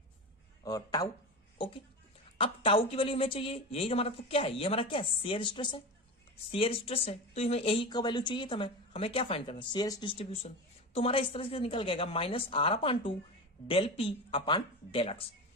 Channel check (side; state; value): both; normal; correlation 0.25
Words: और टाउ। ओके, अब टाउ की वैल्यू हमें चाहिए, यही हमारा तो क्या है, ये हमारा क्या है, शेयर स्ट्रेस है, शेयर स्ट्रेस है, तो हमें यही का वैल्यू चाहिए था। हमें क्या फाइंड करना है, शेयर डिस्ट्रीब्यूशन। तो हमारा इस तरह से निकल गएगा minus R upon two del P upon del X.